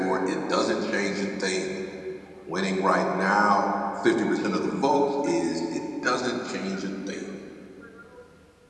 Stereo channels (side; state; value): both; identical; correlation 1.00